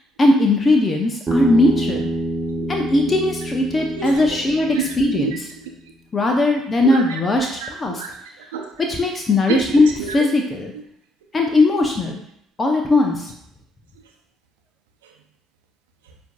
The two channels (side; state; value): both; normal; correlation 0.75